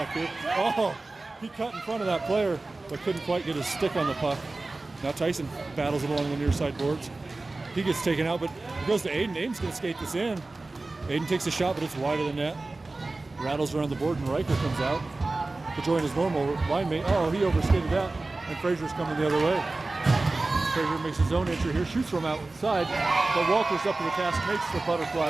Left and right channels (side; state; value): left; quieter; 3.2 dB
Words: here. Oh, he cut in front of that player, but couldn't quite get his stick on the puck. Now Tyson battles it along the near side boards. He gets taken out, but it goes to Aiden. Aiden's going to skate this in. Aiden takes a shot, but it's wide of the net. Rattles around the board, and Riker comes out to join his normal line mate. Oh, he overskated that, and Fraser's coming the other way. Fraser makes his own entry here, shoots from outside, but Walter's up to the task, makes the